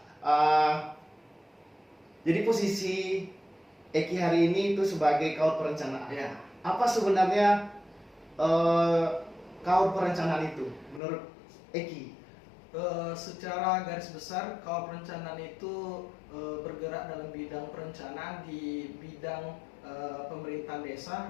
Jadi posisi Eki hari ini itu sebagai kawar perencanaan. Ya. Apa sebenarnya kawar perencanaan itu menurut Eki? Secara garis besar, kawar perencanaan itu bergerak dalam bidang perencanaan di bidang pemerintahan desa,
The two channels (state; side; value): drops out; right; at 11.0 s